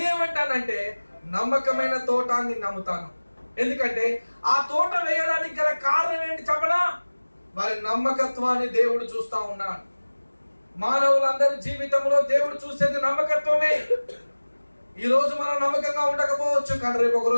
నమ్మకమైన తోట అని నమ్ముతాను. ఎందుకంటే ఆ తోట వేయడానికి గల కారణం ఏంటి చెప్పనా? వారి నమ్మకత్వాన్ని దేవుడు చూస్తా ఉన్నాడు. మానవులందరి జీవితంలో దేవుడు చూసేది నమ్మకత్వమే. ఈ రోజు మనం నమ్మకంగా ఉండకపోవచ్చు, కానీ రేపు ఒక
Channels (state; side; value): inverted; both; correlation -1.00